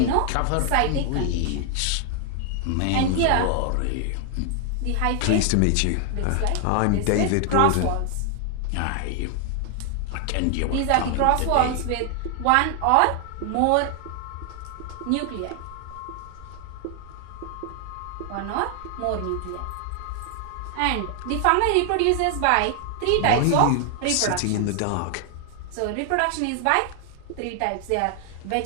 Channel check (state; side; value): different; both; correlation 0.00